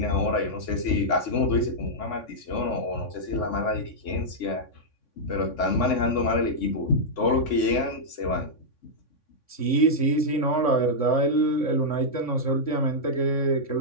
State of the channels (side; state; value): right; late; 3.6 ms